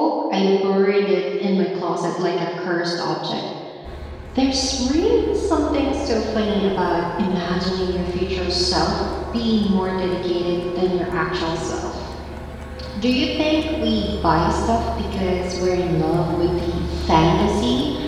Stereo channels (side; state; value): both; identical; correlation 1.00